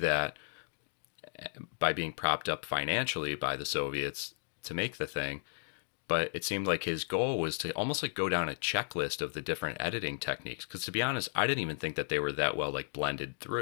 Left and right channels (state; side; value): silent; right; digital silence